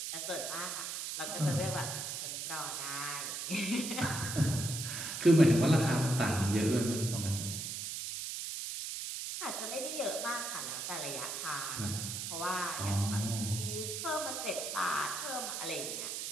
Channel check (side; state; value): right; noise; hiss, 4 dB below the sound